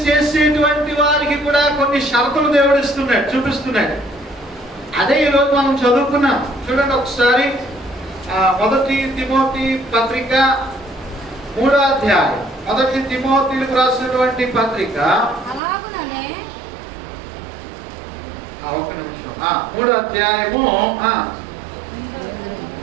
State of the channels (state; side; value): drops out; left; at 15.6 s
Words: చేసేటువంటి వారికి కూడా కొన్ని షరతులు దేవుడు ఇస్తున్నాడు, చూపిస్తున్నాడు. అదే ఈరోజు మనం చదువుకున్నాం. చూడండి ఒకసారి 1 తిమోతి పత్రిక 3వ అధ్యాయం. 1 తిమోతిలకు రాసినటువంటి పత్రిక ఒక్క నిమిషం. 3వ అధ్యాయము